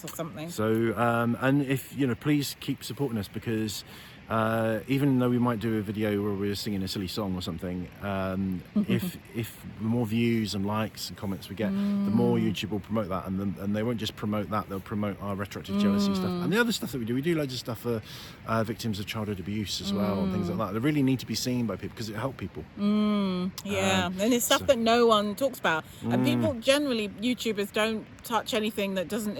or something. So and if please keep supporting us, because even though we might do a video where we're singing a silly song or something, if the more views and likes and comments we get, the more YouTube will promote that, and they won't just promote that, they'll promote our retroactive jealousy stuff and the other stuff that we do. We do loads of stuff for victims of childhood abuse as well, and things like that. They really need to be seen by people because it helps people. And it's stuff that no one talks about, and people generally, YouTubers don't touch anything that isn't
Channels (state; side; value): identical; both; correlation 1.00